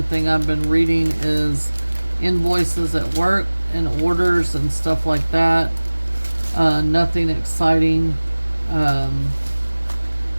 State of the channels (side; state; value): both; inverted; correlation -1.00